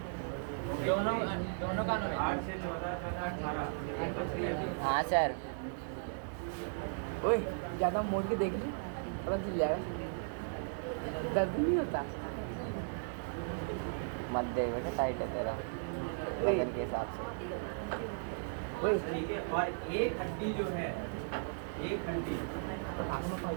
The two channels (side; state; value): left; silent; digital silence